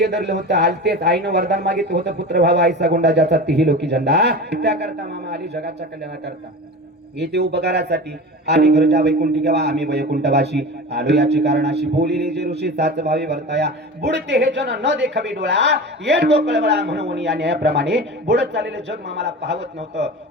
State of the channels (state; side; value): normal; both; correlation 0.31